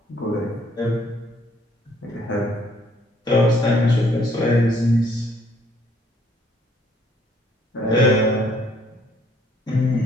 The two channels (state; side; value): normal; both; correlation 0.64